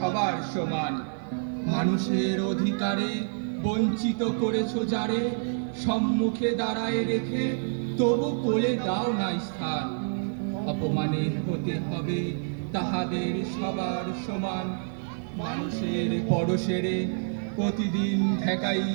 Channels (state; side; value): silent; left; digital silence